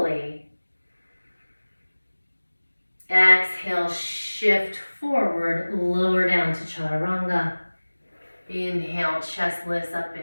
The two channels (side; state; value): both; inverted; correlation -1.00